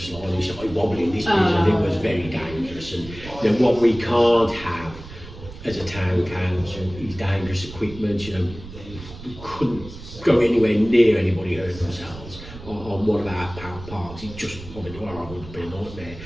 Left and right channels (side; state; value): right; noise; rumble, 14 dB below the sound